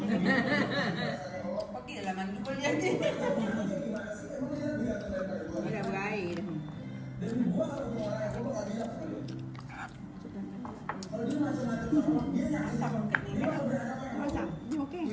Okey dalam mandi boleh jadi. Dia dah berair dah. Masak. Ni okey.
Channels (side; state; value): both; identical; correlation 1.00